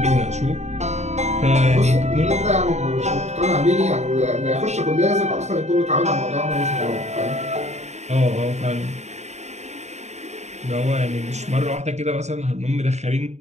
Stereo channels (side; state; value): left; late; 0.33 ms